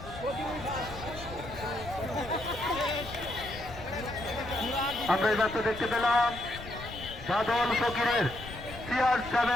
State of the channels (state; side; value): noise; left; rumble, 13 dB below the sound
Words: আমরা এই মাত্র দেখতে পেলাম বাদল ফকিরের